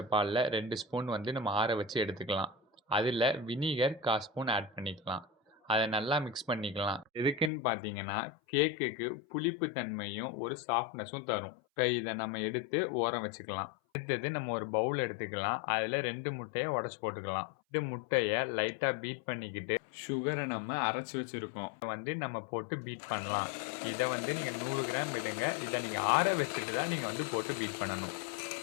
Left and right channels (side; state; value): right; drops out; at 7.5 s